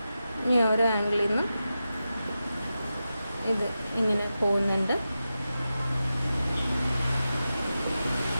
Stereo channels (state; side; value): inverted; both; correlation -0.91